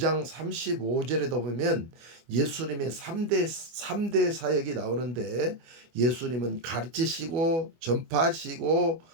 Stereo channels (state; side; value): late; left; 25 ms